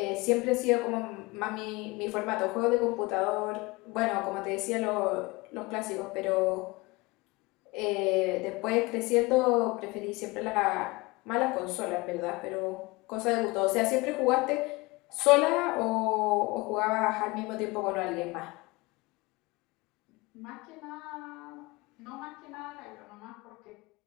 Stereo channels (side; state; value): right; quieter; 23.7 dB